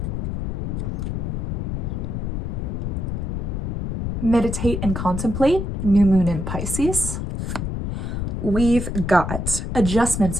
meditate and contemplate, new moon in Pisces. We've got adjustments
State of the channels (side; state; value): left; noise; rumble, 2 dB below the sound